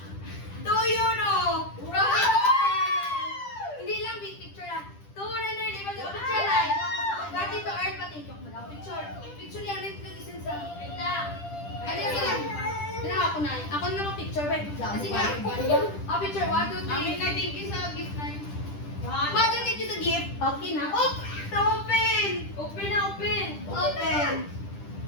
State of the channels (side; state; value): right; late; 10 ms